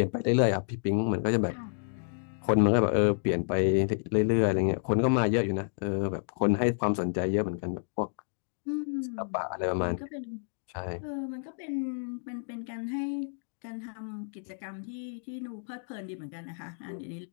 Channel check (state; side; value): silent; right; digital silence